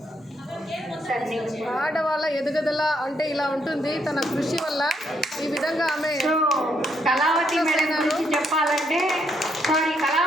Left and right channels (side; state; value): both; normal; correlation 0.75